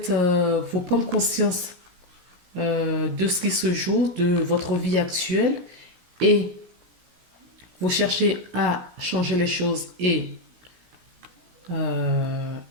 vous prendre conscience de ce qui se joue, de votre vie actuelle et vous cherchez à changer les choses et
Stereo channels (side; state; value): left; late; 17 ms